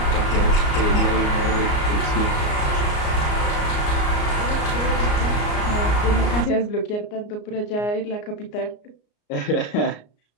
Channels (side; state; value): right; late; 34 ms